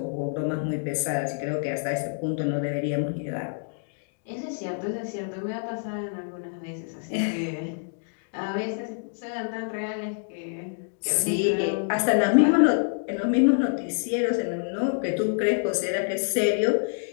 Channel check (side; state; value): right; silent; digital silence